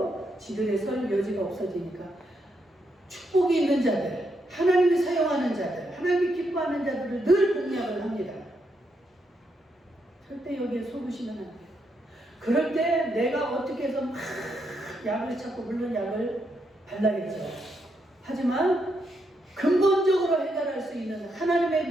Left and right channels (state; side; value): normal; both; correlation 0.79